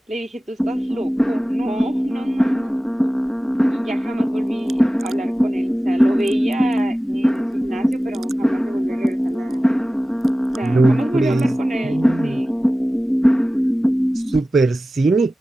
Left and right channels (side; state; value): both; normal; correlation 0.96